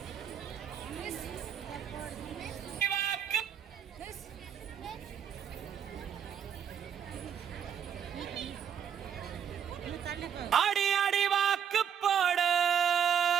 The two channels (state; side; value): quieter; left; 8.4 dB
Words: ஆடி ஆடி வாக்கு போட